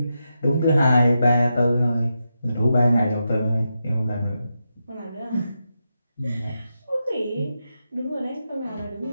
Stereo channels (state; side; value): inverted; both; correlation -0.87